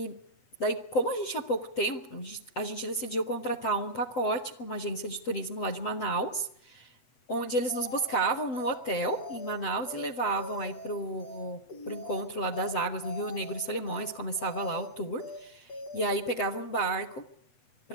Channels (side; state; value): right; late; 7.7 ms